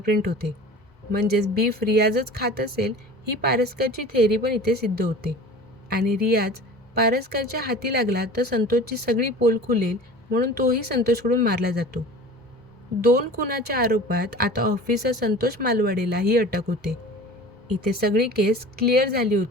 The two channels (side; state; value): both; normal; correlation 0.39